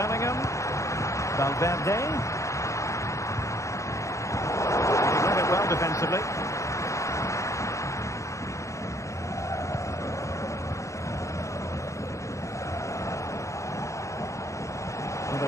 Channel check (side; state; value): right; late; 0.15 ms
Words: Valverde. He read it well defensively.